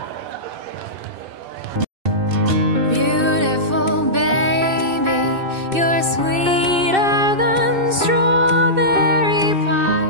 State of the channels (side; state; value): left; late; 2.6 ms